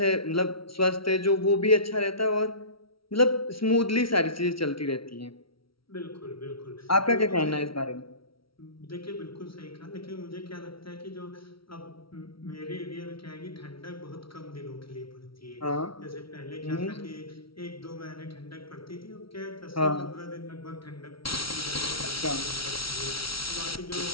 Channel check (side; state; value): right; late; 0.75 ms